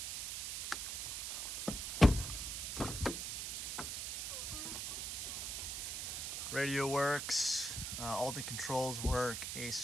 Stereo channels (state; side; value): noise; right; hiss, 3 dB below the sound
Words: Radio works, all the controls work,